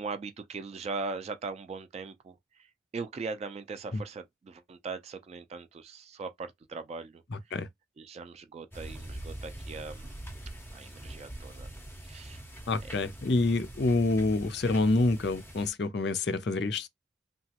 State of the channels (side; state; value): both; normal; correlation 0.64